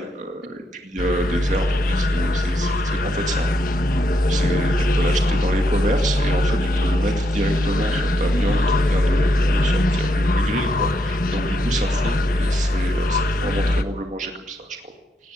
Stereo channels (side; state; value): both; normal; correlation 0.79